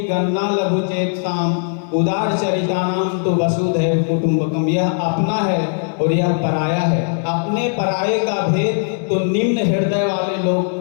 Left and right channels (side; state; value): right; silent; 63 dB below the other